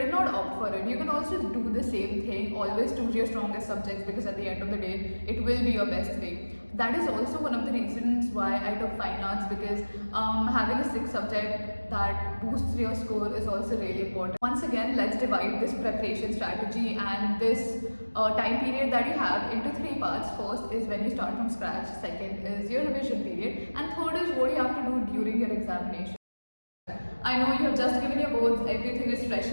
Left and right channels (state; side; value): inverted; both; correlation -1.00